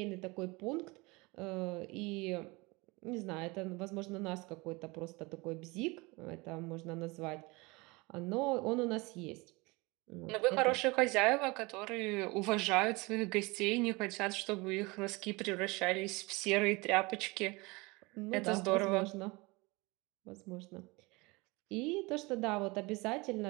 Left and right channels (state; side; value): quieter; left; 24.9 dB